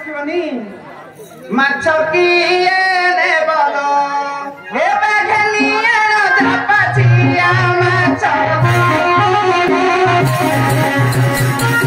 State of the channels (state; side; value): identical; both; correlation 1.00